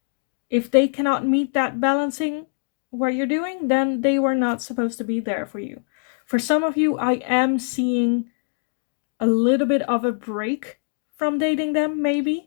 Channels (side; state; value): right; silent; digital silence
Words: If they cannot meet that balancing what you're doing, then they were not supposed to be there for you. For some of you, I am seeing a little bit of a break from dating them,